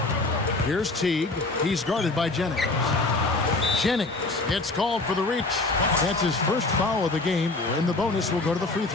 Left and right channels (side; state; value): right; quieter; 3.2 dB